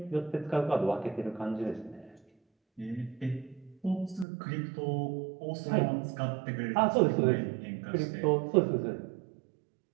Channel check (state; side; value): drops out; left; at 4.2 s